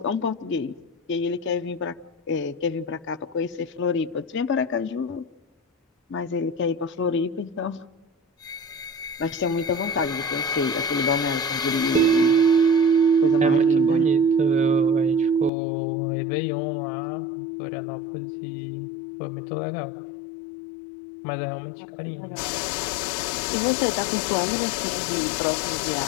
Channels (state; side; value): drops out; right; at 15.5 s